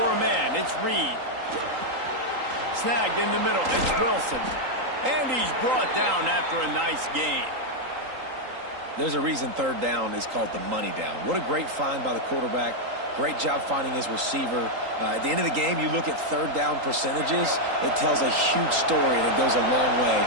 a man. It's Reed. Snagged in the middle. It's Wilson. And he's brought down after a nice gain. There's a reason 3rd down is called the money down. What a great find by the quarterback. Great job finding his receiver. At the end of the game, you look at 3rd down percentages. It tells a huge story, and it goes a long way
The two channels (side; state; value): left; late; 3.8 ms